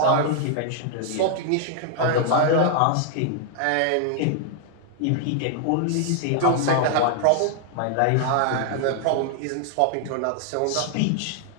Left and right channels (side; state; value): both; different; correlation 0.00